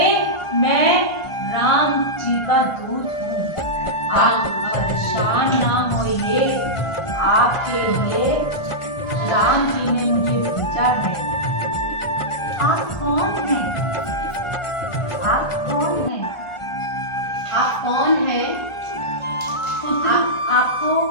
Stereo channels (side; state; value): right; late; 1.4 ms